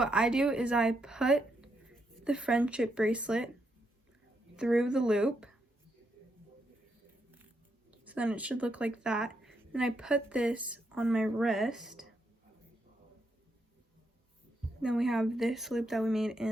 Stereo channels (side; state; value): both; normal; correlation 0.80